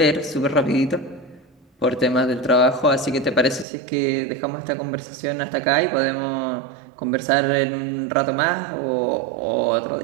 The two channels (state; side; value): drops out; left; at 3.7 s